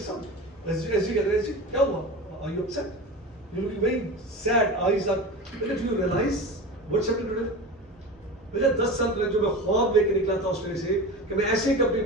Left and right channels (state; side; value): normal; both; correlation 0.29